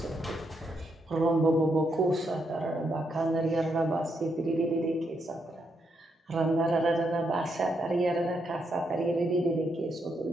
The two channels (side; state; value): both; normal; correlation 0.79